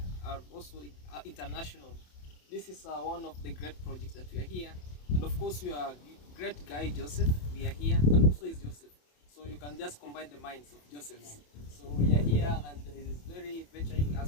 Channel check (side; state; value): right; late; 27 ms